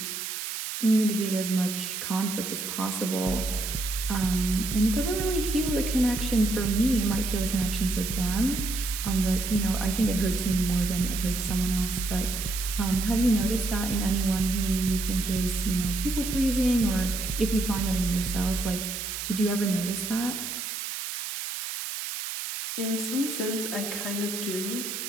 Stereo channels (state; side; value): noise; right; hiss, 5 dB below the sound